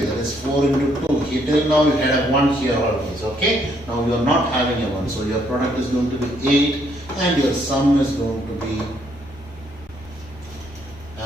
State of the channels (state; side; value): normal; both; correlation 0.70